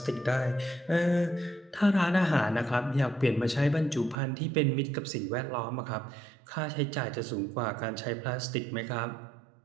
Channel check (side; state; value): left; drops out; at 4.2 s